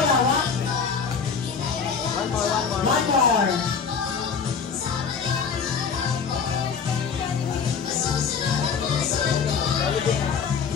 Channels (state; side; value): quieter; right; 6.0 dB